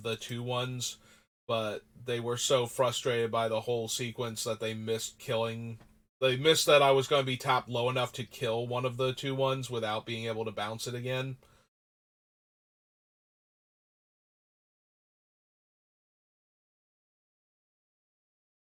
the 2/1s, but they were so frustrated by the whole sequence that they missed killing. They missed that I was going to be tapped low enough to kill one of the 2/1s without being able to bounce it again.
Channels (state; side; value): identical; both; correlation 1.00